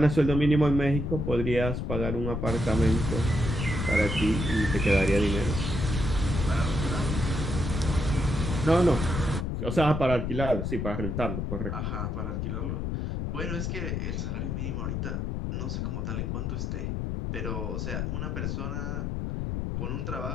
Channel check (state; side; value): noise; left; rumble, 2 dB below the sound